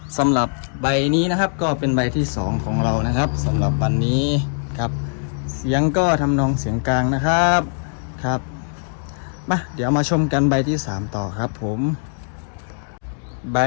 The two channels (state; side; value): silent; right; 65 dB below the other